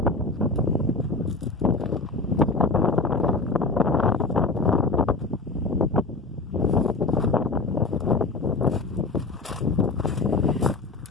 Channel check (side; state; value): right; quieter; 3.6 dB